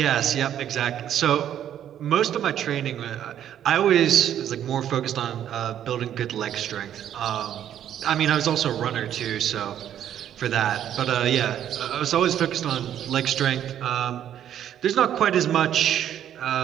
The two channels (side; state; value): left; quieter; 10.4 dB